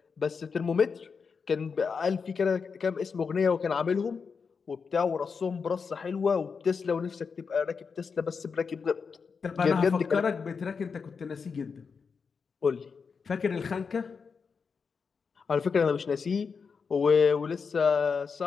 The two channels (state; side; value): quieter; right; 5.5 dB